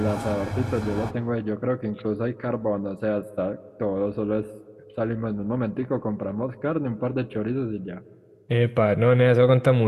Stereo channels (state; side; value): identical; both; correlation 1.00